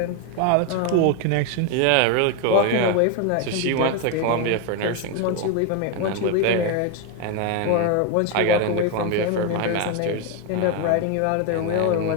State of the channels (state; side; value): different; both; correlation 0.01